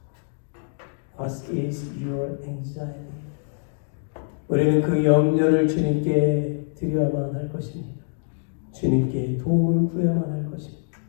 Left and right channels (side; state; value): right; silent; digital silence